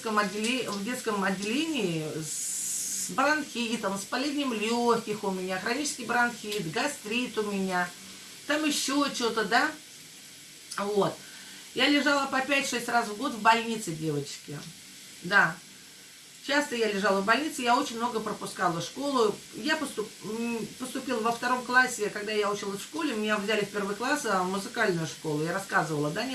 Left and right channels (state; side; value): identical; both; correlation 1.00